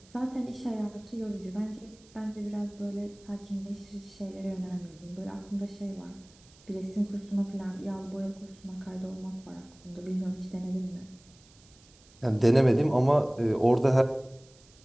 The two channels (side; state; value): right; noise; hiss, 26 dB below the sound